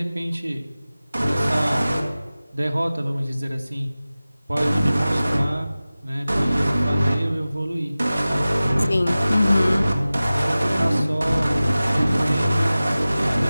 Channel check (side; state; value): both; inverted; correlation -0.97